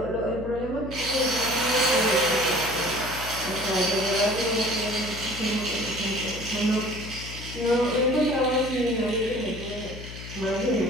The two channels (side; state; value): left; noise; hum, 11 dB below the sound